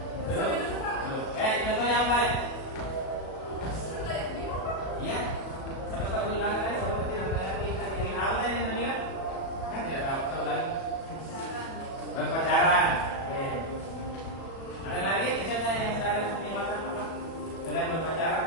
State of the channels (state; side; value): late; right; 37 ms